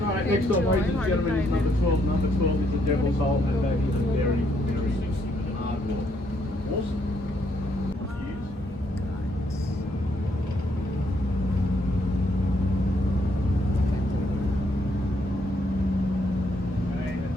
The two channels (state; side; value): normal; both; correlation 0.72